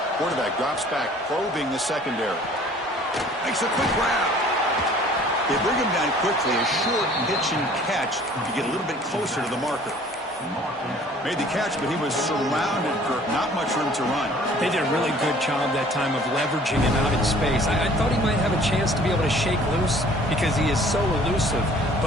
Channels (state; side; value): normal; both; correlation 0.53